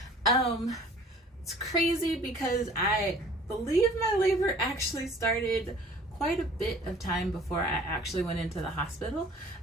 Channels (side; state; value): both; normal; correlation 0.50